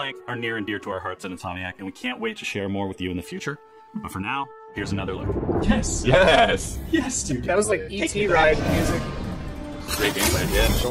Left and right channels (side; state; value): both; identical; correlation 1.00